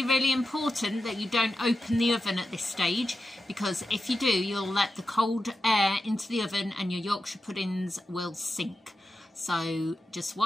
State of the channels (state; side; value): normal; both; correlation 0.90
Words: really important that you don't open the oven at this stage, because if you do, you'll let the cold air into the oven and your Yorkshire puddings will sink. So just